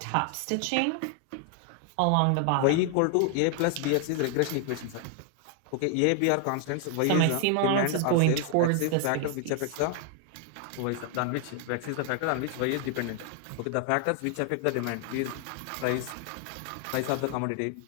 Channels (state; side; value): different; both; correlation 0.00